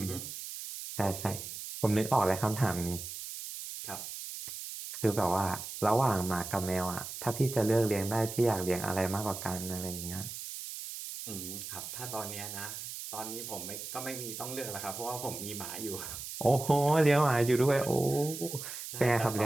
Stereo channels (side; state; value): right; noise; hiss, 8 dB below the sound